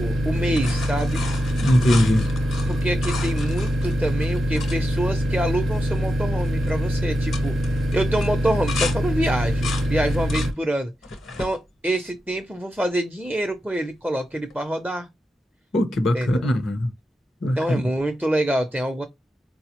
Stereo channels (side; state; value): both; normal; correlation 0.88